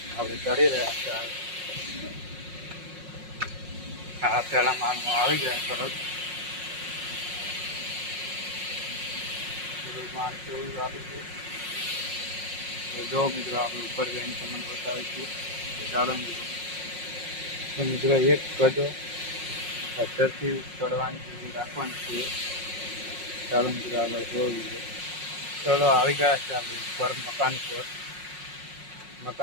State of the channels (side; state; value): left; late; 5.5 ms